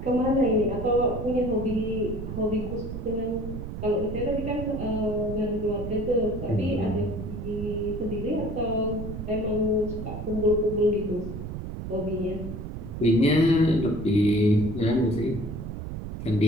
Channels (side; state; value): right; noise; rumble, 7 dB below the sound